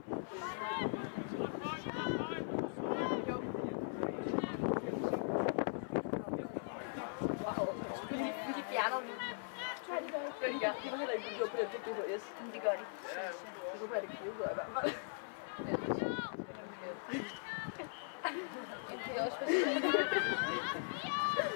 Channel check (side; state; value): right; silent; 51 dB below the other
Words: De fjerner den. Nej, det gør ikke. Det gør de. De var heller ikke gjort på den på DHS. Det gør de. Jeg håber, at det giver ud i hvert fald. Det er også for